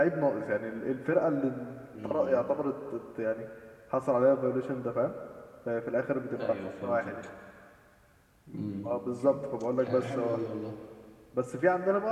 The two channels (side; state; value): both; identical; correlation 1.00